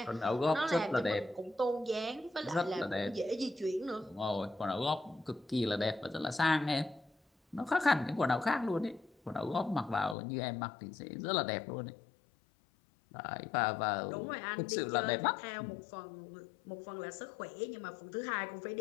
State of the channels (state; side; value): drops out; right; at 10.2 s